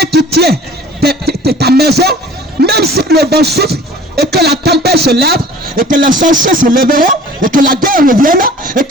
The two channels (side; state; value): both; normal; correlation 0.47